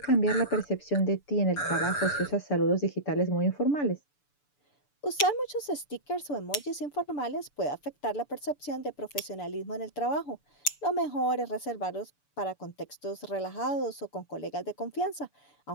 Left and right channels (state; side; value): late; right; 6.9 ms